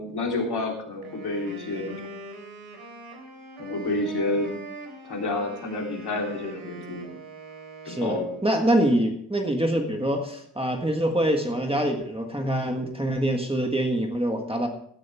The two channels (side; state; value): both; normal; correlation 0.54